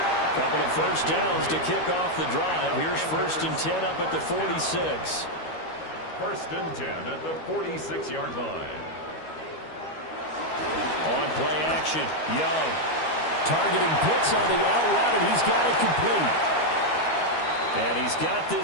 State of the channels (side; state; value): right; late; 13 ms